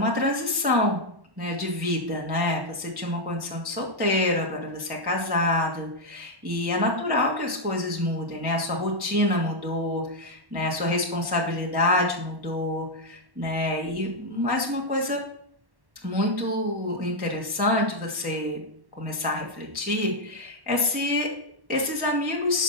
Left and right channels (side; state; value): left; late; 1.1 ms